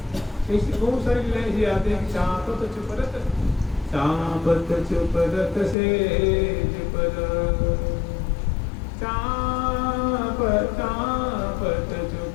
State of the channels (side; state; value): right; drops out; at 5.8 s